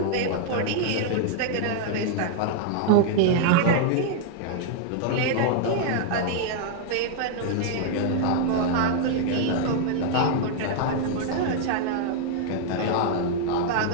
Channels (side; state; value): both; different; correlation -0.01